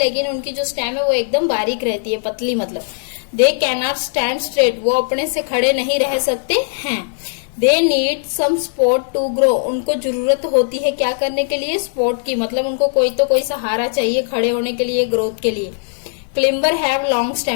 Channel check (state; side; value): silent; right; digital silence